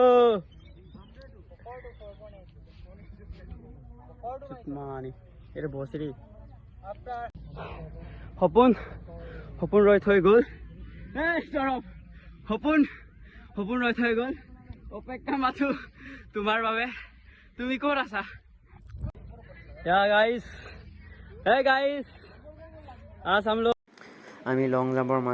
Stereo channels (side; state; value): both; identical; correlation 1.00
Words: mani এটা বসরি হপন রয় থৈ গল এই সরব হপন রয় থৈ গল অপেক্ষা মাথু তোমার বাবে তুমি কোন আছা yeah guys hey guys आज हम लोग আমি লং জাম্পৰ